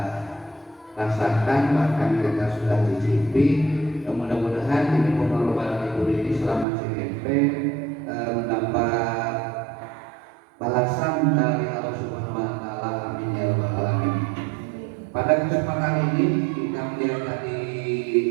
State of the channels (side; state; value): left; drops out; at 6.7 s